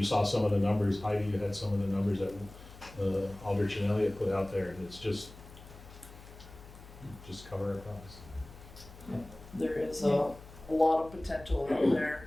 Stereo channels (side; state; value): left; noise; hum, 18 dB below the sound